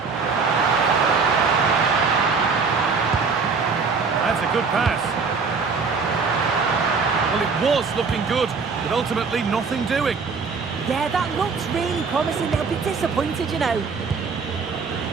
That's a good pass. Well, it was looking good, but ultimately nothing doing. Yeah, that looks really promising. They'll be disappointed, you know.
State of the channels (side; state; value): left; quieter; 5.0 dB